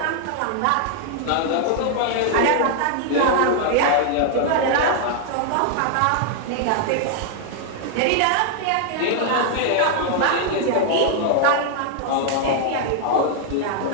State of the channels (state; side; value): different; both; correlation 0.00